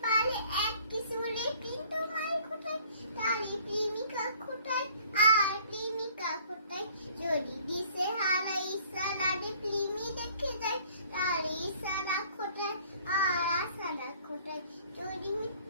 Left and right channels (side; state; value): both; inverted; correlation -0.55